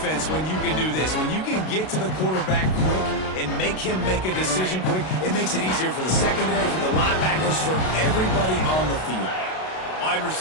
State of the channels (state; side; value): late; right; 32 ms